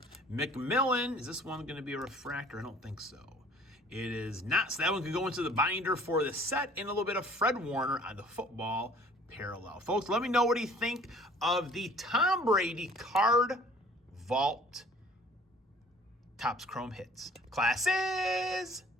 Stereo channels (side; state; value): both; normal; correlation 0.53